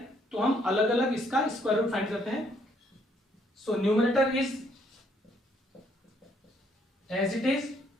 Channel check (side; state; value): both; normal; correlation 0.68